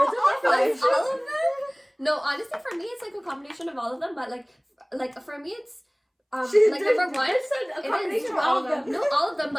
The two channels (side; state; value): both; identical; correlation 1.00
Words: of Like, affirmation. all of them. No, honestly, for me, it's like a combination of all of them. But like for me, it's like number one, a combination of all of them. No, all of them,